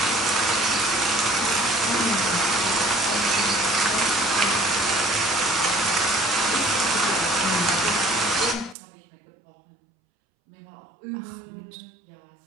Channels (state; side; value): drops out; left; at 8.8 s